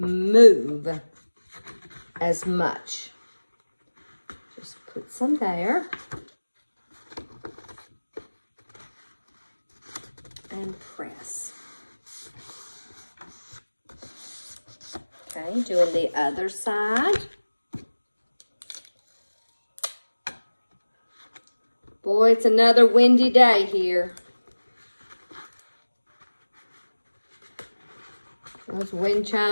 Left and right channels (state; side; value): inverted; both; correlation -1.00